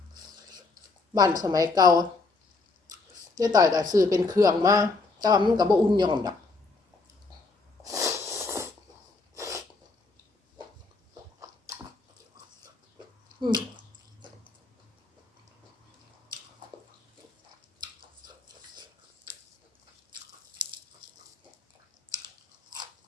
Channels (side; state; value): right; quieter; 3.8 dB